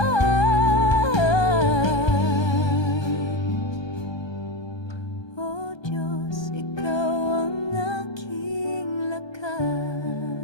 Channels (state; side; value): late; right; 1.3 ms